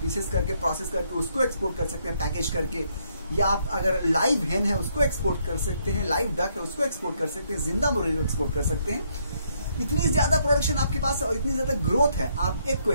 पीसेस करके प्रोसेस करके उसको एक्सपोर्ट कर सकते हैं पैकेज करके, या आप अगर लाइव हेन है उसको एक्सपोर्ट कर सकते हैं, लाइव डक है उसको एक्सपोर्ट कर सकते हैं, जिंदा मुर्गी को एक्सपोर्ट कर सकते हैं। इतनी ज्यादा प्रोडक्शन आपके पास और इतनी ज्यादा ग्रोथ है, आप एग को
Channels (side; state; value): both; inverted; correlation -0.72